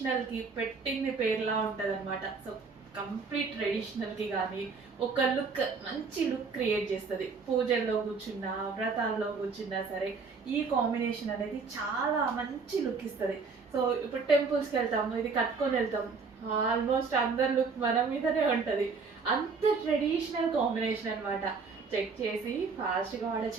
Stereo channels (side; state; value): left; quieter; 4.8 dB